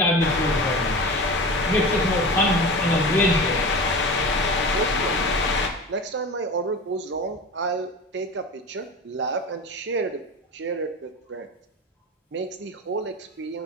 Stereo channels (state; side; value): normal; both; correlation 0.30